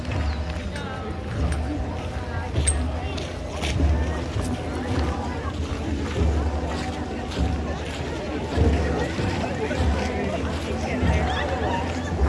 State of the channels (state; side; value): identical; both; correlation 1.00